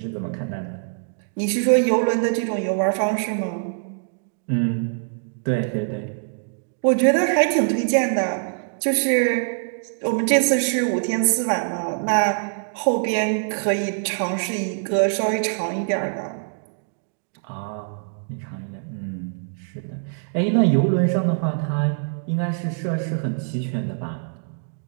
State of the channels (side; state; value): left; silent; digital silence